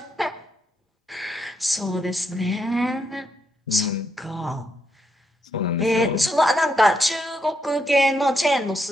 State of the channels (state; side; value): normal; both; correlation 0.78